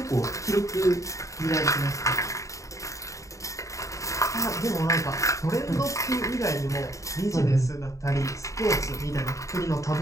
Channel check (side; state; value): right; late; 0.16 ms